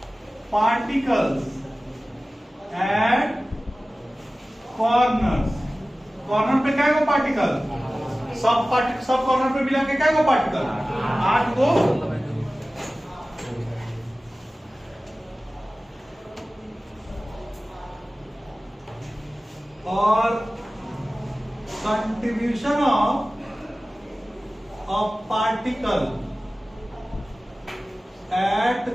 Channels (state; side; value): normal; both; correlation 0.97